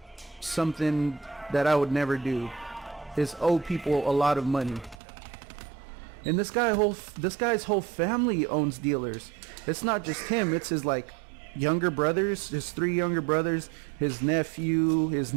something that I would never do, is owe people a lot of money. And this guy's whole family owns dealers. It's not just him. It's his, like, younger brothers, his 3 younger brothers, his nephew, his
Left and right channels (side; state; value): left; drops out; at 5.0 s